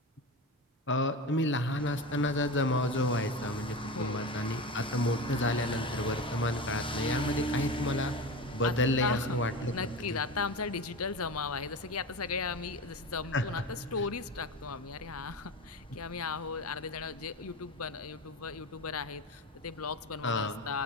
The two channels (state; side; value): normal; both; correlation 0.26